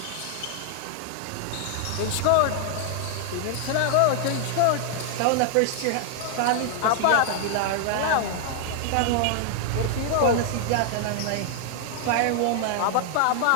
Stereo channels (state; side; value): different; both; correlation 0.00